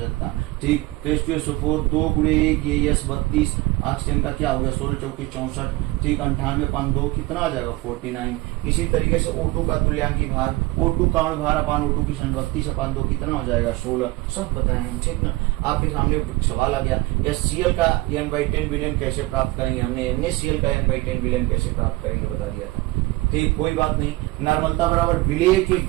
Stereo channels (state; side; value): quieter; left; 20.6 dB